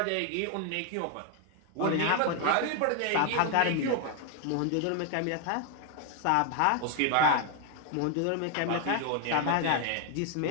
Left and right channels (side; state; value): both; different; correlation 0.00